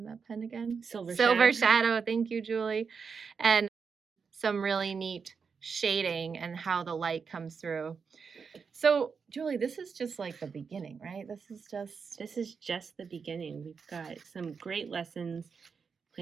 that pen again? Silver Shadow, thank you, Julie, and some really neat shading and how the light comes through. So, Julie, this is just like the beginning, right? This is just the beginning. We've got some great lessons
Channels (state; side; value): quieter; left; 5.7 dB